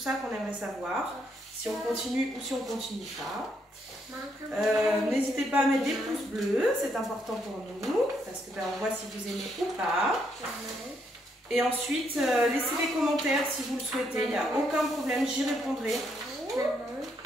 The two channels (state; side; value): normal; both; correlation 0.75